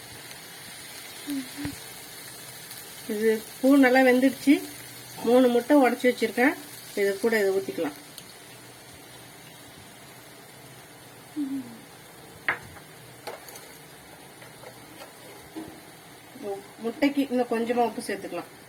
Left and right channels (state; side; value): identical; both; correlation 1.00